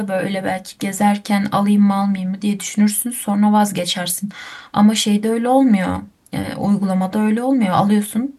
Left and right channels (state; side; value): identical; both; correlation 1.00